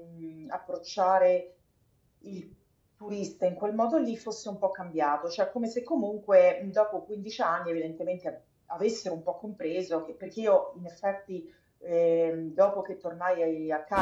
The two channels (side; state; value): both; identical; correlation 1.00